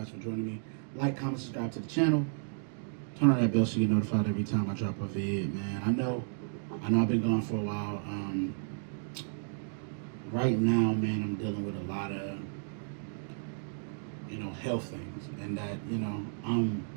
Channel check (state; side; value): silent; left; digital silence